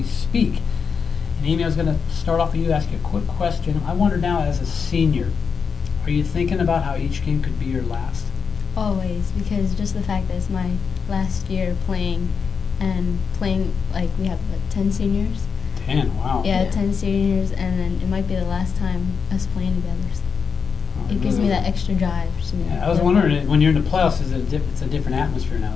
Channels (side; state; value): right; quieter; 5.9 dB